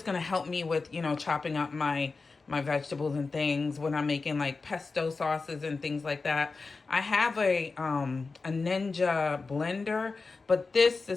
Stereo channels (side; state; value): right; quieter; 4.1 dB